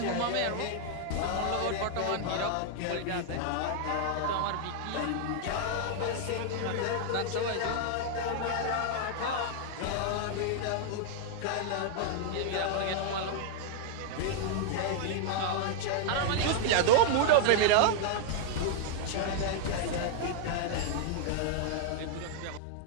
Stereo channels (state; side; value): different; both; correlation 0.00